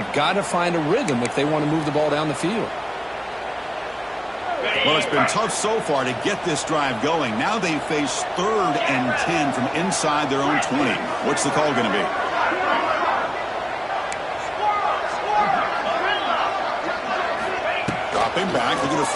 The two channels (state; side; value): identical; both; correlation 1.00